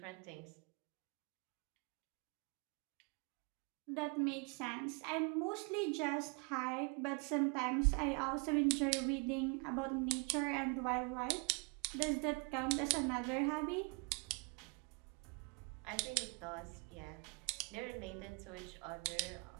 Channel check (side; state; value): left; quieter; 33.1 dB